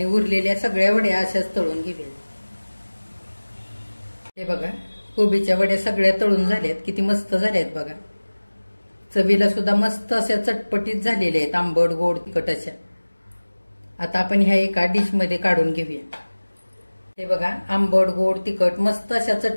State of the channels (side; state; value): both; inverted; correlation -1.00